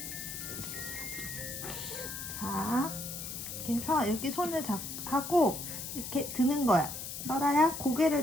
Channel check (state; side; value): noise; left; hiss, 7 dB below the sound